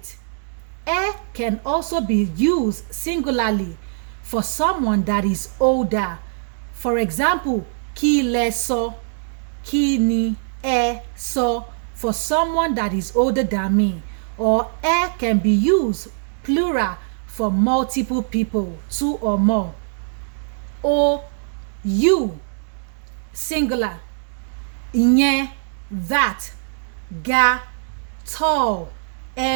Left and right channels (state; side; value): silent; left; digital silence